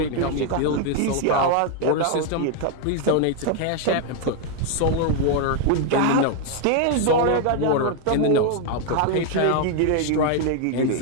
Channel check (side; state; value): both; different; correlation 0.00